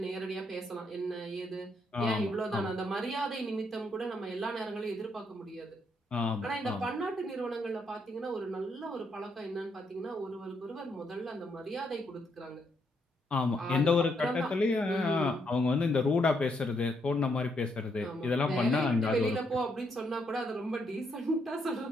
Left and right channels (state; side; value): normal; both; correlation 0.76